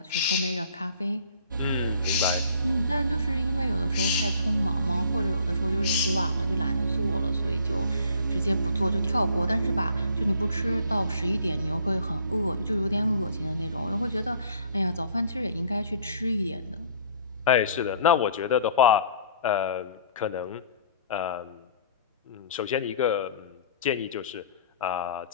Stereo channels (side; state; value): both; inverted; correlation -0.54